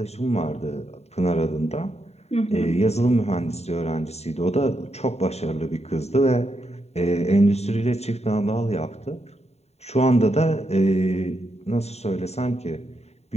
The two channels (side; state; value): right; late; 0.31 ms